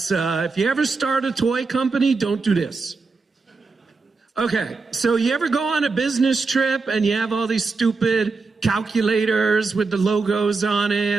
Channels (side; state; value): left; quieter; 4.2 dB